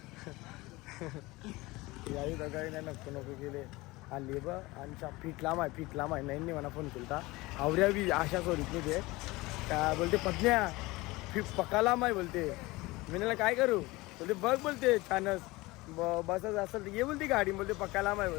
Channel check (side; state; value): right; quieter; 21.4 dB